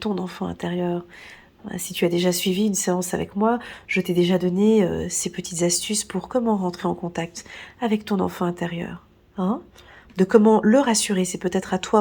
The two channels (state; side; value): identical; both; correlation 1.00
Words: enfant intérieur. Si tu as déjà suivi une séance avec moi, je t'ai déjà donné ces petites astuces pour comment rentrer en contact avec ton enfant intérieur. Hein, de comment le rassurer, c'est peut-être à